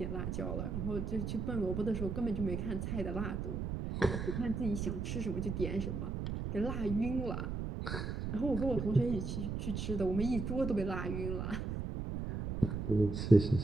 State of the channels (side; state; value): right; noise; rumble, 3 dB below the sound